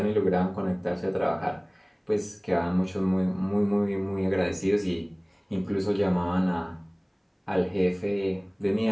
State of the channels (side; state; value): both; identical; correlation 1.00